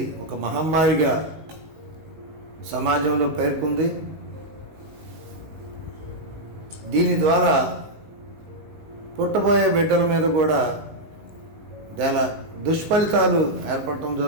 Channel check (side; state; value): left; late; 19 ms